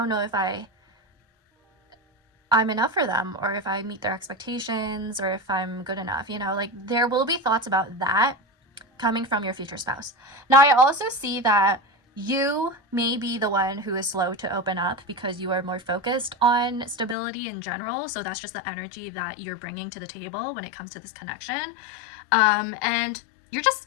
know if I'm enough for them, or if I meet their expectations, or if I'm good enough, you know, like there will be thoughts about that coming from your future spouse. Now, I also see that you may be the one who is slow to open up because you are more focused on stability in general. So that's just the energy that you're bringing to the table when it comes to this connection. And you're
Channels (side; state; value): right; drops out; at 17.2 s